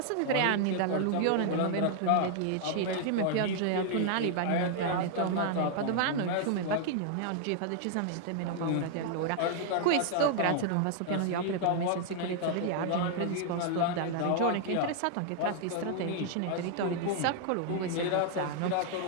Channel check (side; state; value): both; different; correlation -0.01